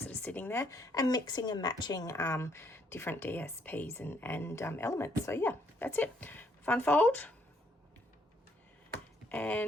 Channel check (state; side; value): normal; both; correlation 0.70